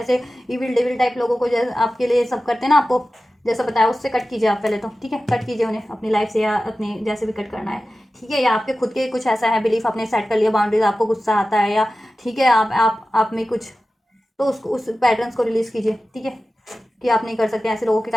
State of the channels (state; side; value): normal; both; correlation 0.95